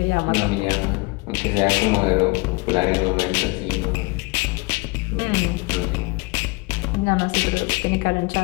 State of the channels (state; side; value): quieter; right; 26.7 dB